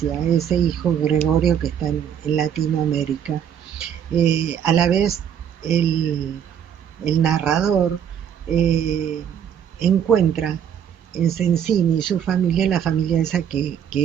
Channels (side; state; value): left; quieter; 8.6 dB